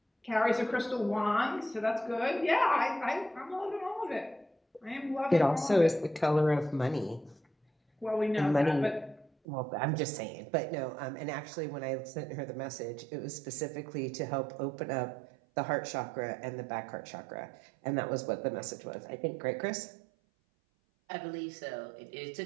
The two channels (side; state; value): left; drops out; at 9.3 s